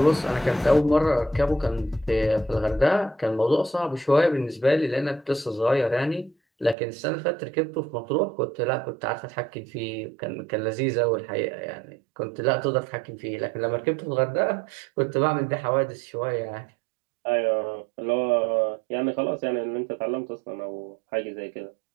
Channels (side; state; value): left; drops out; at 6.8 s